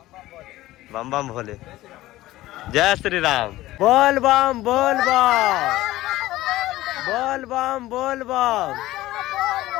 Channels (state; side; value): quieter; right; 16.5 dB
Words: बम बम भोले जय श्री राम बोल बम बोल बम बोल बम बोल बम।